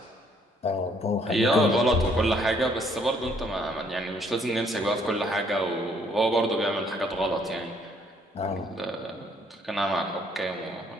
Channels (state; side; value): normal; both; correlation 0.65